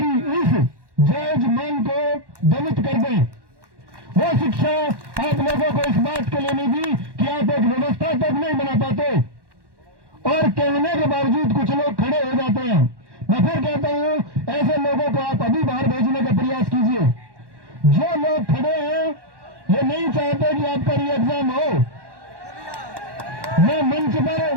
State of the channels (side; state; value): left; late; 1.1 ms